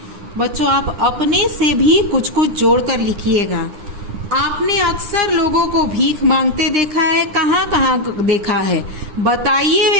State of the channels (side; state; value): left; late; 9.8 ms